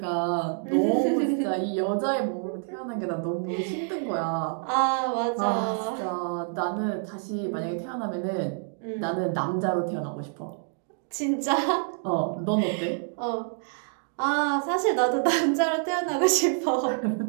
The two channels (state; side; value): silent; left; 60 dB below the other